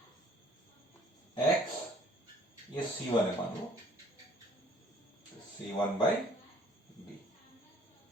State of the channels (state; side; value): normal; both; correlation 0.57